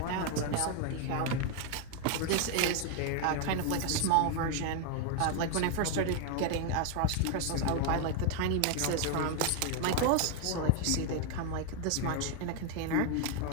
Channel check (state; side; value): different; both; correlation 0.01